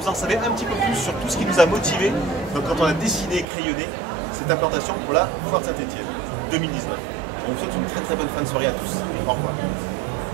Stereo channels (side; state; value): left; drops out; at 3.5 s